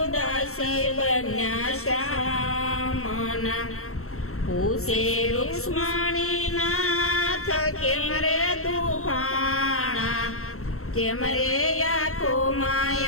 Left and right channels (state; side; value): late; right; 0.63 ms